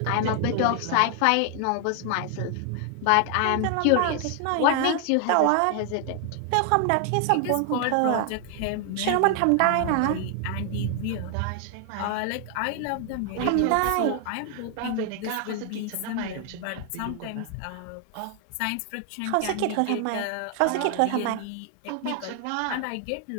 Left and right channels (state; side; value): different; both; correlation 0.00